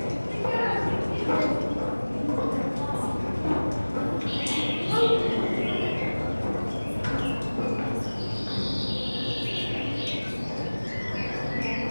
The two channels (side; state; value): both; inverted; correlation -1.00